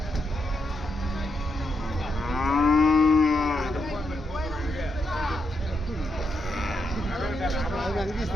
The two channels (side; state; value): both; normal; correlation 0.81